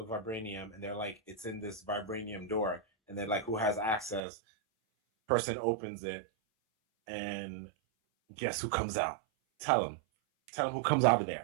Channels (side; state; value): left; drops out; at 4.2 s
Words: vibranium, and they're like, it's in this vibranium door, and they're like, who has access? Person opens it, and guess who comes out? Tell them who comes out of